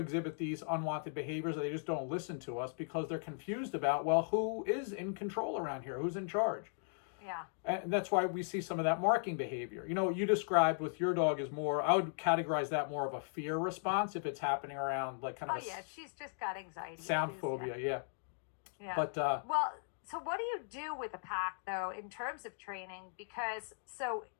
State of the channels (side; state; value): right; silent; digital silence